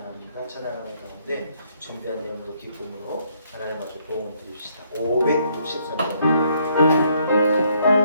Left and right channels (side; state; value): both; inverted; correlation -0.70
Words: 찬양하는 가운데 준비한 내용으로 기쁨으로 하나님 앞에 도움을 드립시다. 563장입니다.